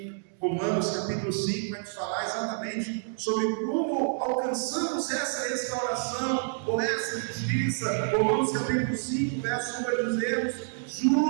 Romanos capítulo 5 vai nos falar exatamente sobre como alcançamos essa restauração ou essa justiça. Romanos capítulo 5, verso 1 vai dizer:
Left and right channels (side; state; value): left; silent; digital silence